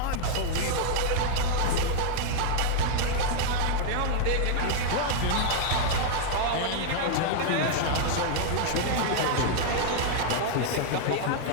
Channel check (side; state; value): both; different; correlation 0.00